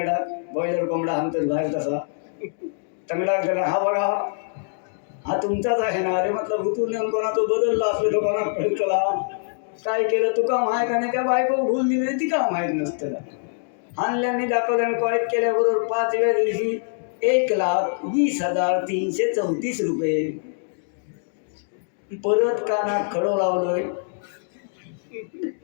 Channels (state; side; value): silent; right; digital silence